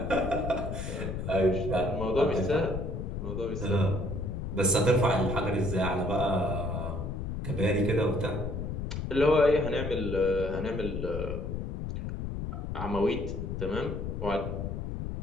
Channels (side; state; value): left; noise; rumble, 4 dB below the sound